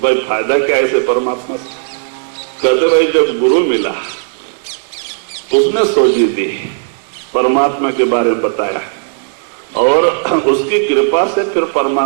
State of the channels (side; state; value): left; silent; digital silence